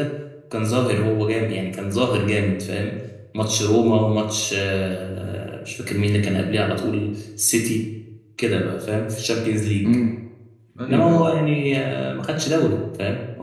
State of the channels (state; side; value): identical; both; correlation 1.00